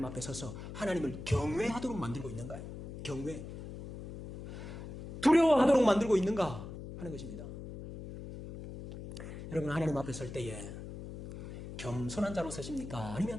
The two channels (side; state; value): left; noise; hum, 10 dB below the sound